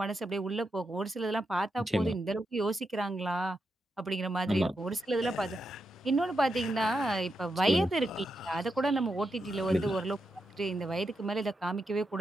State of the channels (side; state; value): both; normal; correlation 0.85